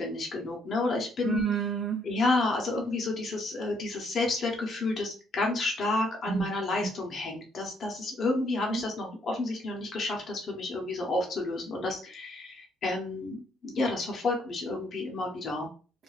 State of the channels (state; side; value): normal; both; correlation 0.70